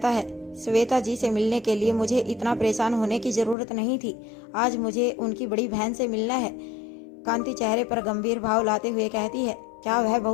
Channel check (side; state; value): right; drops out; at 3.6 s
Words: है, श्वेता जी से मिलने के लिए मुझे इतना परेशान होने की जरूरत नहीं थी। आज मुझे उनकी बड़ी बहन से मिलना है। कांति चेहरे पर गंभीर भाव लाते हुए कहती है, क्या वह